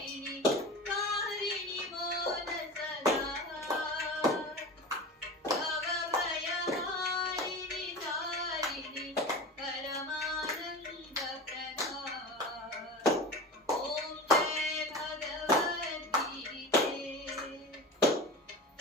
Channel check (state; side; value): normal; both; correlation 0.31